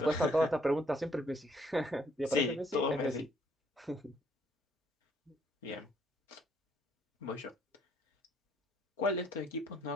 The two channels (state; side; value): normal; both; correlation 0.67